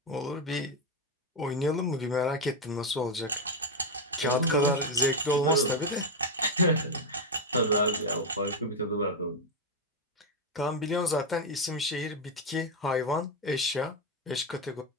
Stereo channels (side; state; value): both; normal; correlation 0.07